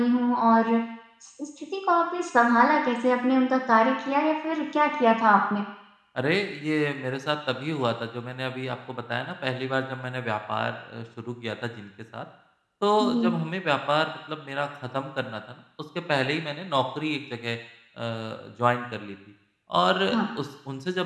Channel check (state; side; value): identical; both; correlation 1.00